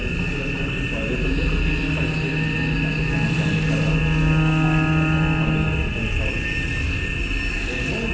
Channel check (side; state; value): both; identical; correlation 1.00